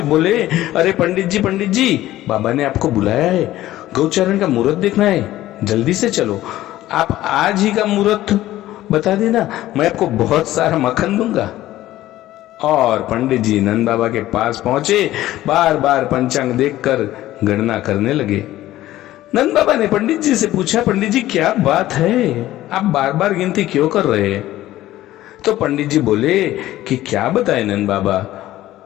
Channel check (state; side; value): quieter; right; 14.9 dB